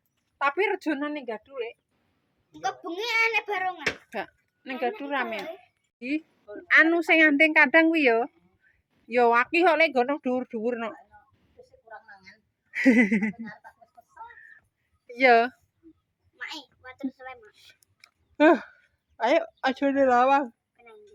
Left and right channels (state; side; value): identical; both; correlation 1.00